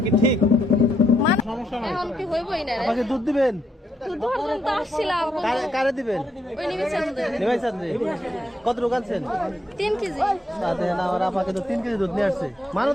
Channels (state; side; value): normal; both; correlation 0.78